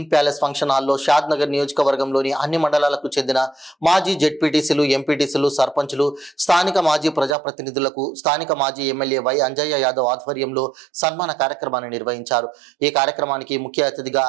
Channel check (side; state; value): left; drops out; at 7.4 s